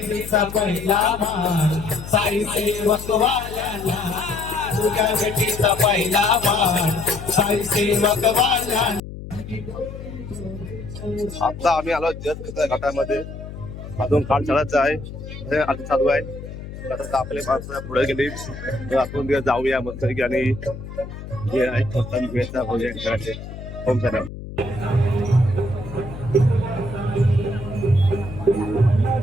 पहिला मान साई सेवक वाल्याला पूजा विधीचा पहिला मान साई सेवक वाल्याला. आता आम्ही आलो जस्ट घाटामध्ये अजून काळ चढायचं आहे हे आता चालू आहे. आता आपले माणसं पुढे गेली तर आपण जाऊया मस्त आणि जे आहे भेटचा भोजन करायचे. होम सर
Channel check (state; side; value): noise; left; hum, 11 dB below the sound